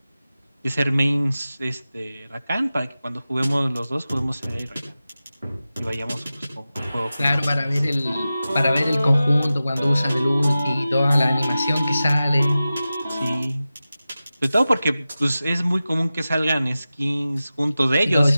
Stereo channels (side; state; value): both; inverted; correlation -0.95